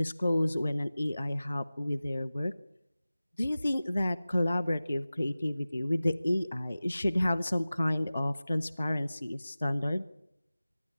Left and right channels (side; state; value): both; inverted; correlation -0.97